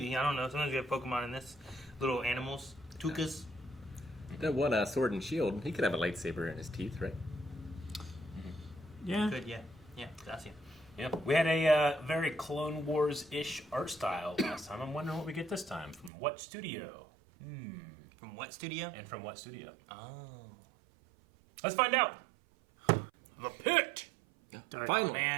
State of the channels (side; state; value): left; drops out; at 16.1 s